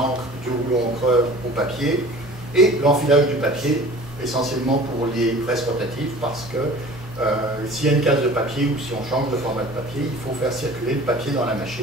du rouleau encreur au papier. Et l'enfilage du papier, essentiellement pour les presses rotatives, parce que s'il y a une case de papier ou si on change de format de papier, il faut faire circuler le papier dans la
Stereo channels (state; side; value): normal; both; correlation 0.44